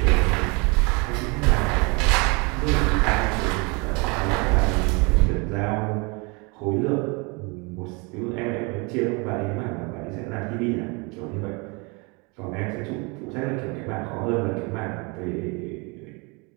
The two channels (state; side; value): quieter; left; 29.7 dB